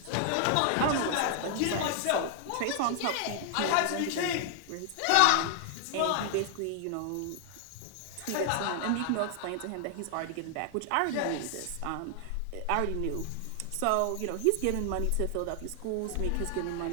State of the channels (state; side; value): different; both; correlation 0.00